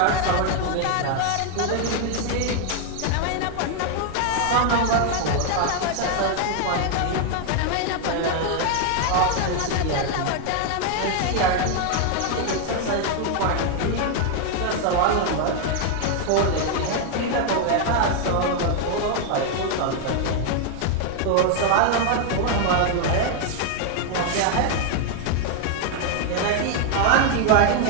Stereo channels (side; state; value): both; different; correlation 0.00